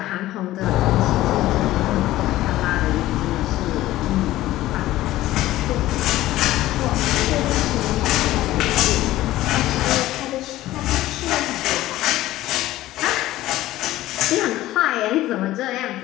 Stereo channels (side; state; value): right; quieter; 15.7 dB